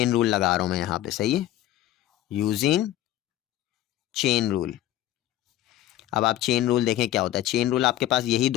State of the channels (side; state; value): right; quieter; 13.7 dB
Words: रूल लगा रहा हूं मैं यहाँ पे। सही है, यूजिंग चेन रूल। अब आप चेन रूल देखें क्या होता है। चेन रूल आपके पास यही